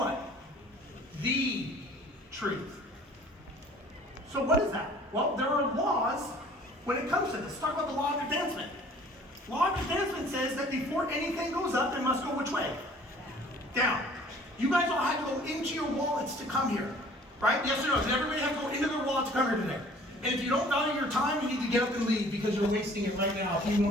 The truth. So what is that? Well, there are laws when it comes to this. Let's talk about the law of advancement. Law of advancement says that before anything goes up, it must go which way? Down. You guys all had to go into your wallets to come here, right? Yes or no? Did everybody have to go into their wallet to come here today? And if you don't value your time, you need to get up and leave because you're wasting it right now if you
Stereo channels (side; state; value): both; normal; correlation 0.52